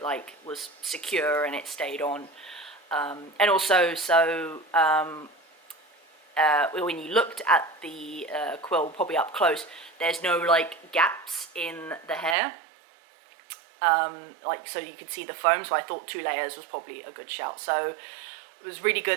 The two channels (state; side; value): drops out; left; at 12.4 s